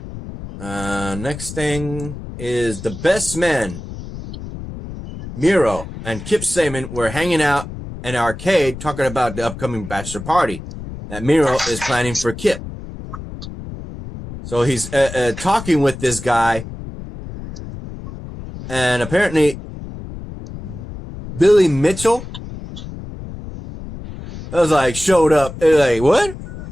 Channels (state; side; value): noise; left; rumble, 11 dB below the sound